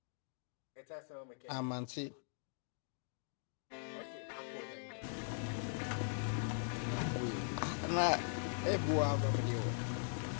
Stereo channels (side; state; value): right; silent; digital silence